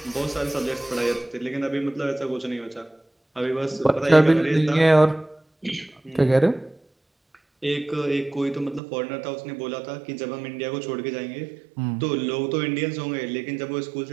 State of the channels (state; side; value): drops out; left; at 8.8 s